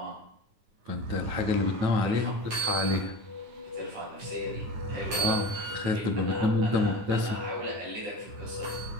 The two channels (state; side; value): late; left; 9.7 ms